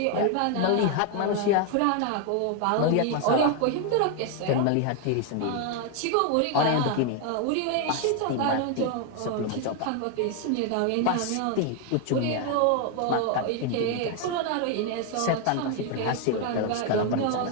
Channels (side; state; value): both; different; correlation 0.01